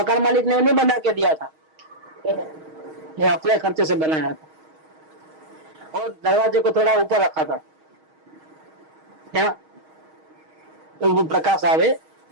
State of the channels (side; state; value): left; late; 6.4 ms